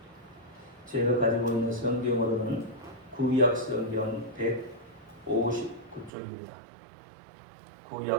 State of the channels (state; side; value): drops out; left; at 6.1 s